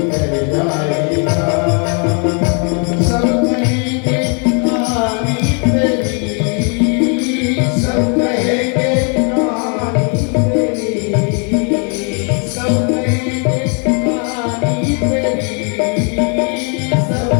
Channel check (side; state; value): right; quieter; 37.7 dB